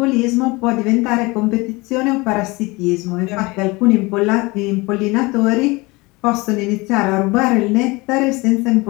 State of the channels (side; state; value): right; quieter; 24.0 dB